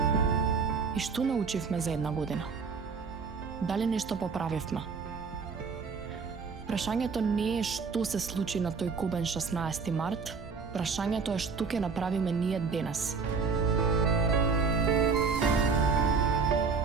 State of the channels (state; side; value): quieter; left; 5.1 dB